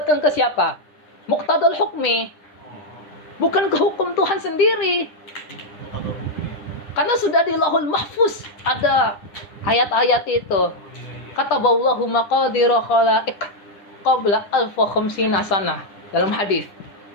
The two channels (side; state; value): right; late; 9.9 ms